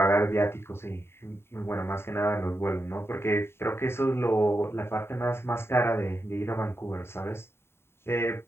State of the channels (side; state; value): right; late; 0.12 ms